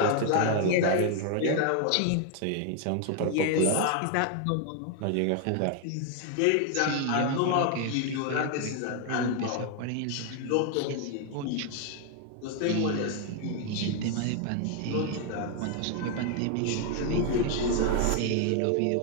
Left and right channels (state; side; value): different; both; correlation 0.00